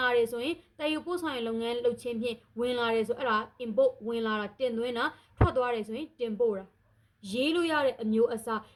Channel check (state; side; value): identical; both; correlation 1.00